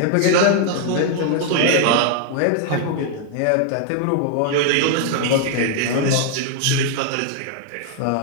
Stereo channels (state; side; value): different; both; correlation 0.00